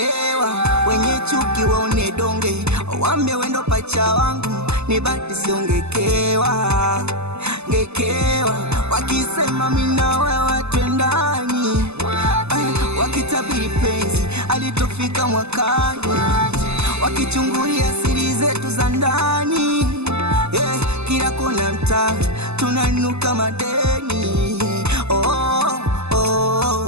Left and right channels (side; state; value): left; late; 0.80 ms